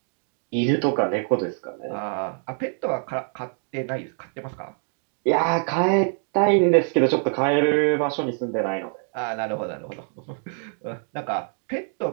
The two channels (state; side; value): silent; left; 57 dB below the other